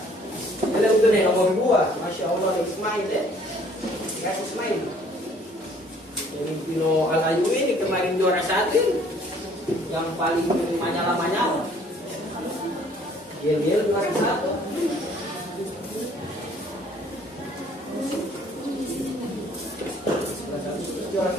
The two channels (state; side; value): normal; both; correlation 0.58